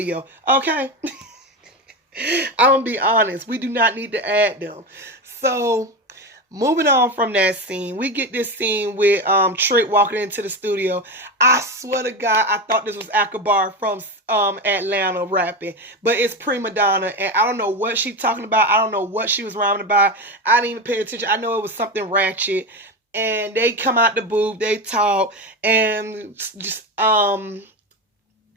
Okay, I'm gonna be honest. We do not need to add them. So. Moving on from that scene, we get this scene with Trick walking into the studio. I swear to God, I thought this was Akbar from Atlanta rapping, but it's Prima Donna, and I don't know what she's talking about. I don't know what she was rhyming about. I didn't even pay attention. I know it was something ratchet, and they come out the booth, they talk, and just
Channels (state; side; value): normal; both; correlation 0.19